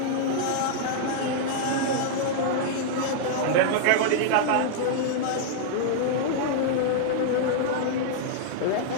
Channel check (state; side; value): different; both; correlation -0.01